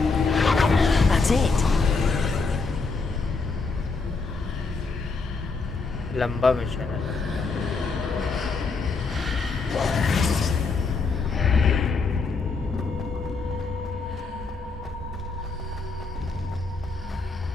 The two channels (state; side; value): quieter; right; 4.3 dB